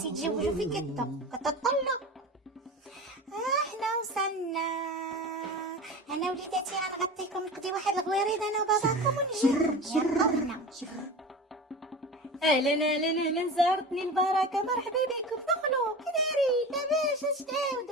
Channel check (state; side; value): normal; both; correlation 0.31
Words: يتزوجوا في كتطلوا. حنا وصلنا انا وليداتي غنغطيكم نقضي واحد الغويريد انا وباباكم ونجي يلا. اهلا اهلا اهلا زارتني البركه مرحبا بكم دخلوا كي دايرين لاباس اش